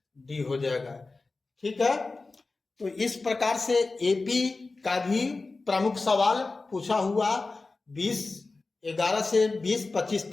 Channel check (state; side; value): quieter; right; 3.6 dB